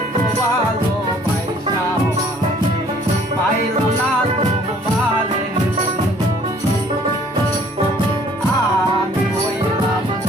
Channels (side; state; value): both; normal; correlation 0.57